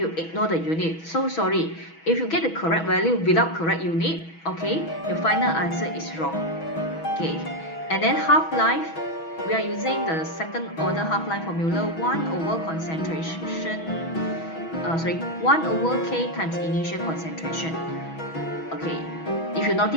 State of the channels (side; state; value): right; late; 6.2 ms